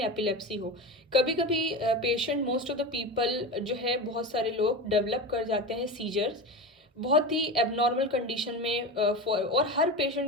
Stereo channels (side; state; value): both; normal; correlation 0.24